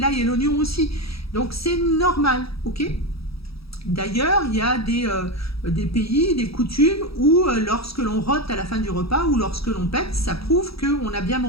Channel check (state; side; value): late; right; 0.77 ms